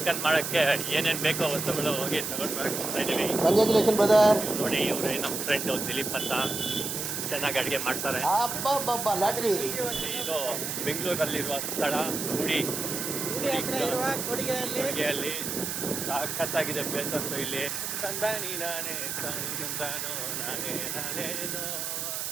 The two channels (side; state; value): right; noise; hiss, 3 dB below the sound